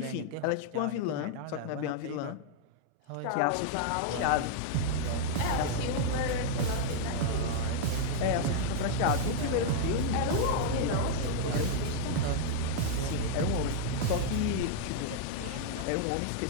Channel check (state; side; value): different; both; correlation -0.01